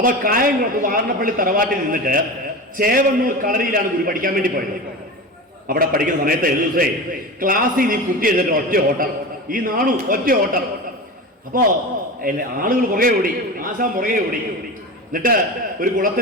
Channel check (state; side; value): normal; both; correlation 0.28